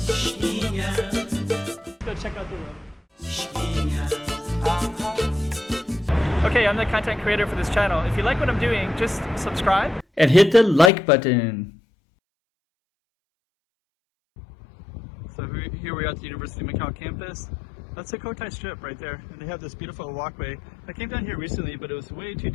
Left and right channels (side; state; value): right; drops out; at 10.9 s